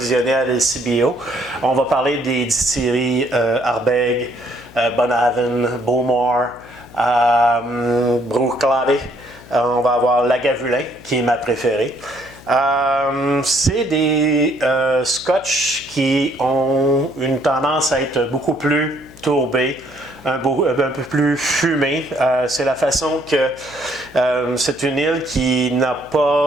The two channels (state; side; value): noise; left; hum, 21 dB below the sound